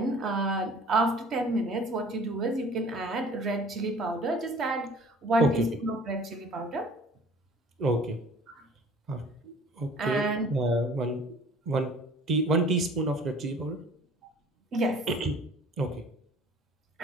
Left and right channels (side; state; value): both; normal; correlation 0.49